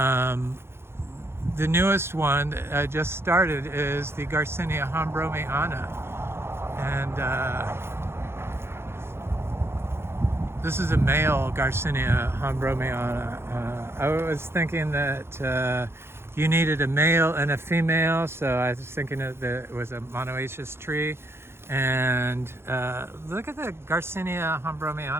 newest one that just started is the Garcinia hombromiana. And this is a male Garcinia hombromiana. I was thinking that you needed a male and a female, so I was thinking that it was a monoecious tree. And look at the Garcinia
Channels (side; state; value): left; late; 0.12 ms